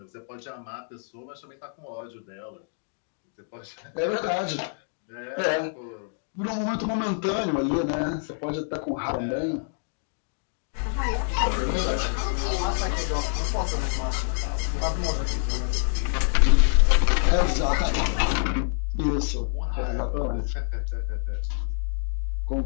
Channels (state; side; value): silent; right; digital silence